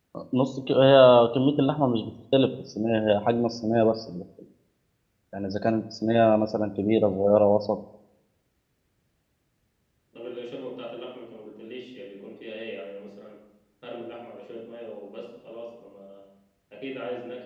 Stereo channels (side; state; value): both; identical; correlation 1.00